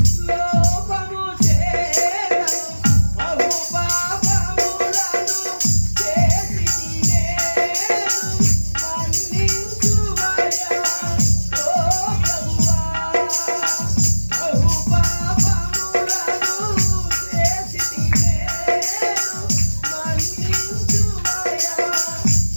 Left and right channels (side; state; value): both; inverted; correlation -1.00